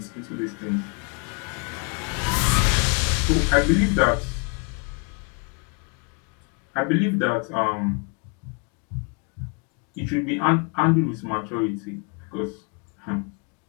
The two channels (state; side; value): quieter; right; 35.6 dB